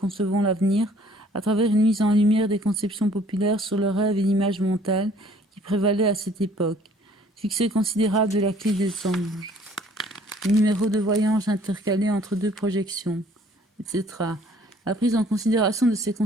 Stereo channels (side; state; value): both; normal; correlation 0.57